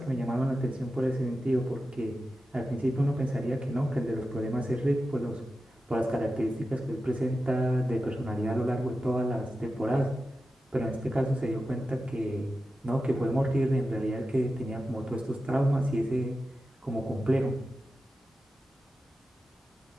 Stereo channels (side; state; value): both; normal; correlation 0.92